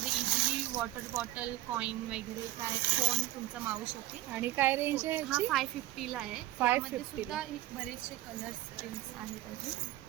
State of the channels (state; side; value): quieter; left; 16.0 dB